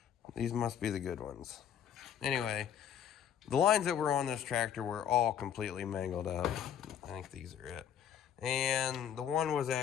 these must be the good ones. Anyway, the lines that were on this tractor were all completely mangled up. I think these are it. And the one was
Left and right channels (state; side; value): quieter; right; 9.1 dB